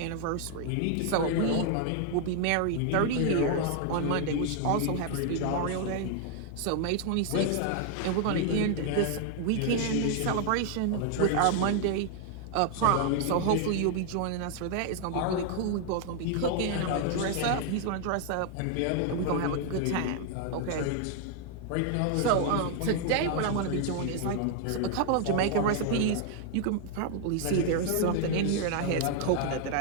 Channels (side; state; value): both; different; correlation 0.00